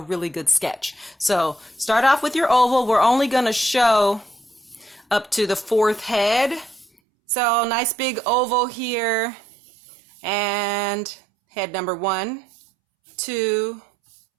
good sketch. So start off with your oval. We're only going to show up to the fourth head. So nice big oval here, and head number 1, 2,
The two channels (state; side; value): drops out; left; at 6.9 s